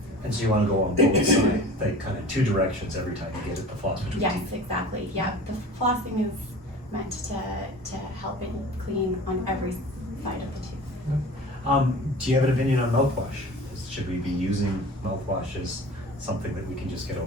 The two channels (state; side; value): normal; both; correlation 0.40